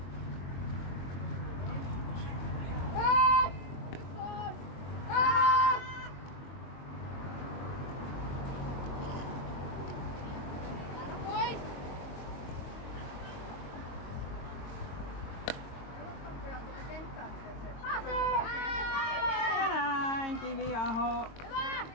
Ja näin Kiviaho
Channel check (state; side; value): late; right; 22 ms